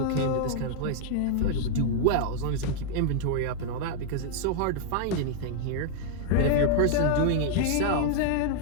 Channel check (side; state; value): both; different; correlation -0.01